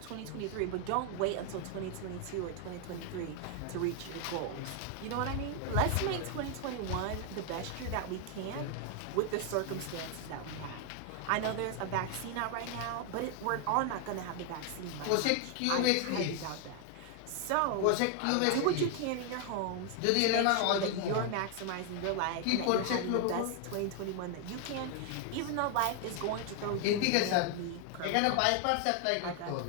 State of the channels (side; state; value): both; different; correlation 0.00